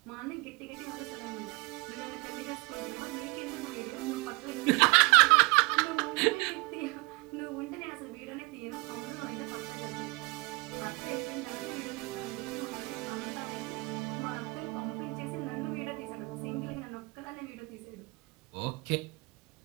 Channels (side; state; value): left; quieter; 26.1 dB